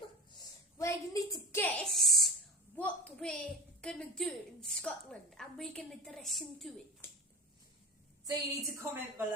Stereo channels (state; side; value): normal; both; correlation 0.30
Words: where you need to guess what we're going to do in Scotland, and we're going to dress into it. So you need to comment